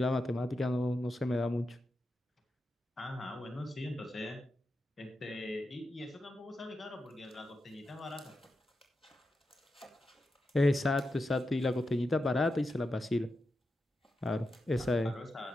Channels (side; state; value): both; normal; correlation 0.89